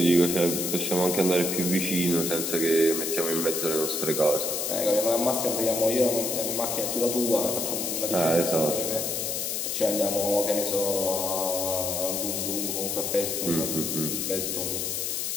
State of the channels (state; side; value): noise; left; hiss, 1 dB below the sound